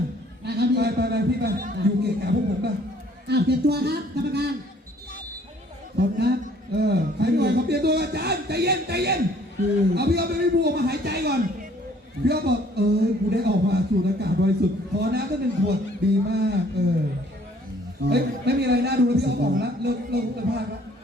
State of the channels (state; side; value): normal; both; correlation 0.59